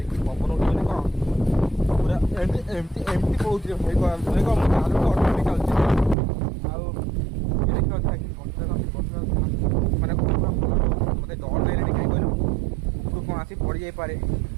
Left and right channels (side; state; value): left; drops out; at 6.2 s